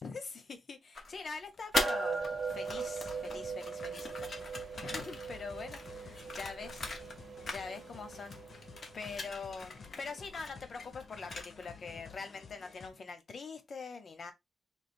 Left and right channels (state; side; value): normal; both; correlation 0.80